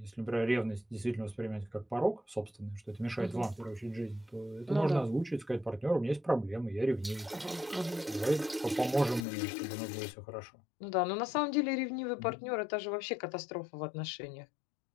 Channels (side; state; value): right; drops out; at 9.2 s